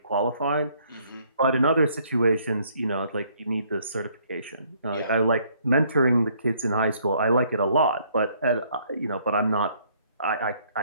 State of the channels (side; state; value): both; inverted; correlation -0.65